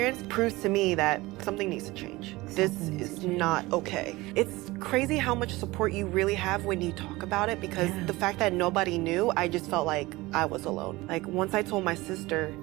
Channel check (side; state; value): left; quieter; 20.6 dB